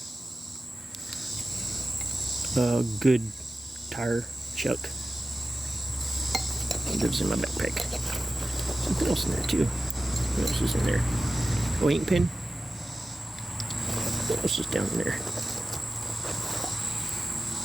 A good tire chuck. It lives in my backpack. Something else in there too. What else is in there? Oh, ink pen. What else is down there?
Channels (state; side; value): normal; both; correlation 0.94